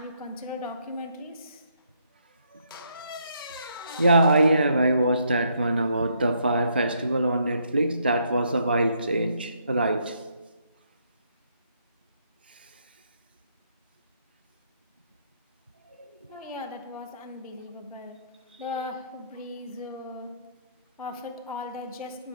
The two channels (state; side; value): inverted; both; correlation -0.73